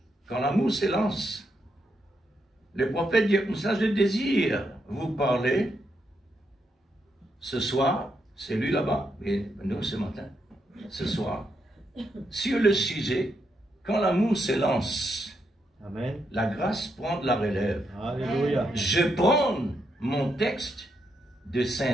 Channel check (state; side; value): normal; both; correlation 0.81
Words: quand l'amour s'élance. Le prophète dit, ça je désire vous parler ce soir, c'est lui là-bas, et nous ce matin, ce soir, sur le sujet, quand l'amour s'élance, Amen. La grâce prend de la relève. Alléluia. Je prends mon texte de